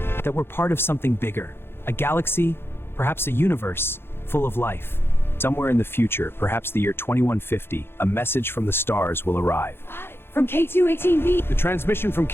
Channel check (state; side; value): late; right; 0.11 ms